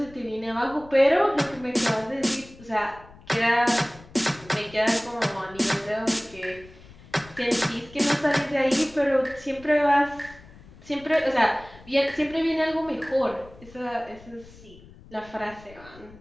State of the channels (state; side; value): noise; left; rumble, 21 dB below the sound